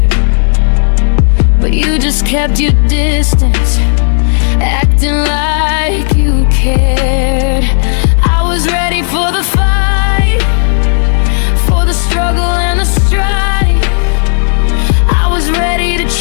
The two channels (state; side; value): silent; right; digital silence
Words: but you just kept your distance, acting like you cared. I was ready for the fight, for the struggle and the strife. I was ready to